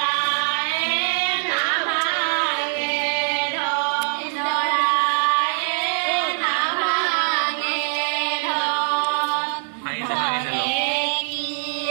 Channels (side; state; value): left; silent; 57 dB below the other